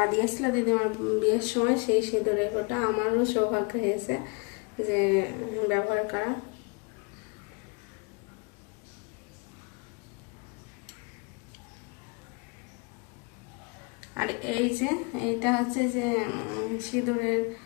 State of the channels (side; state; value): right; quieter; 31.8 dB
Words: দিয়েছিল দিদিমার বিয়ের সময়, সেই সিঁদুরের কোটা আমারও সৌভাগ্য হয়েছে যে ব্যবহার করা। আর এই যে এইটা হচ্ছে যে